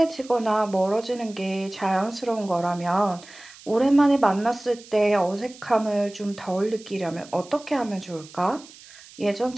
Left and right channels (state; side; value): noise; right; hiss, 21 dB below the sound